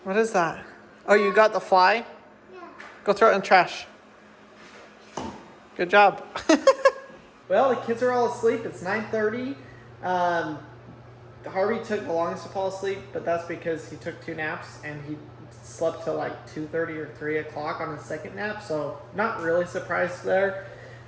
What is that? Oh, you got the fly? Yeah. Go throw it in the trash. Good job. Well, the kids are all asleep. It's 9:30. Harvey took the longest to fall asleep, but that's because he took 2 naps and he slept till like 2:30 or 3 o'clock on his second nap. So not really surprised there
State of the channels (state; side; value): identical; both; correlation 1.00